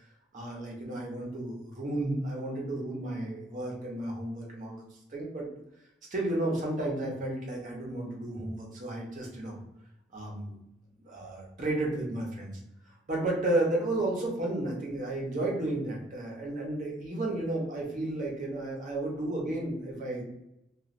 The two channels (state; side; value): normal; both; correlation 0.60